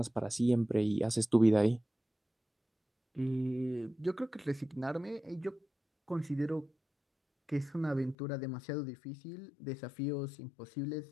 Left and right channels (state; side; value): drops out; right; at 8.2 s